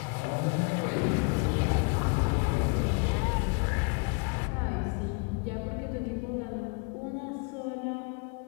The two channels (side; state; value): right; quieter; 34.7 dB